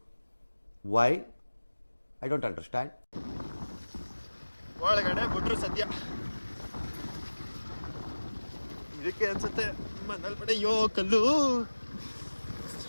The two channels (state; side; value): inverted; both; correlation -1.00